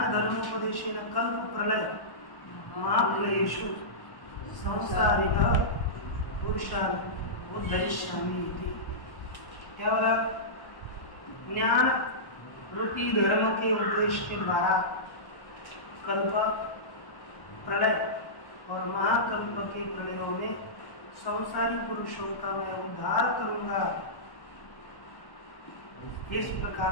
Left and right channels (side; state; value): right; late; 1.1 ms